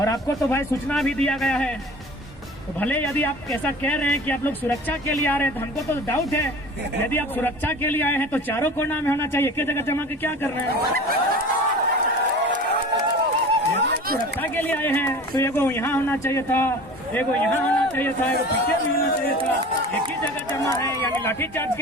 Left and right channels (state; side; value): normal; both; correlation 0.39